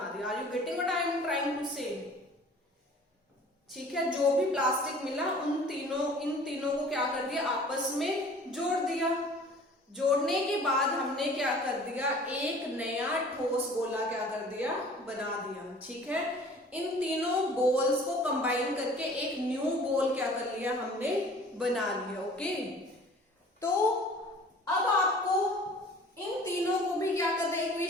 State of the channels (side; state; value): both; normal; correlation 0.48